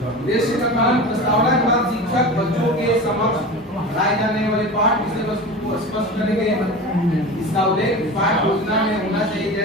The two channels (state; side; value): normal; both; correlation 0.30